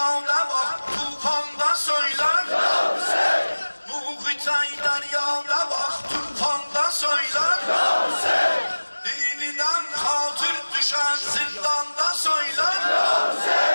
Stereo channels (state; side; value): inverted; both; correlation -1.00